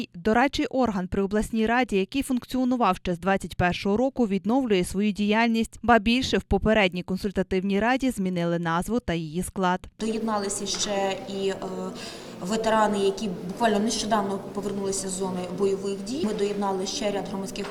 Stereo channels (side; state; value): both; identical; correlation 1.00